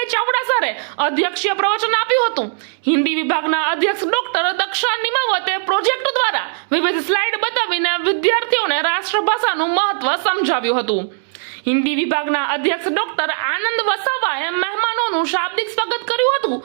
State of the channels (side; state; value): left; silent; digital silence